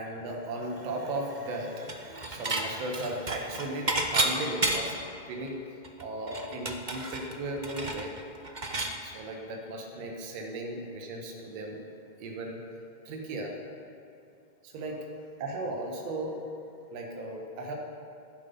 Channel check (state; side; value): late; left; 2.1 ms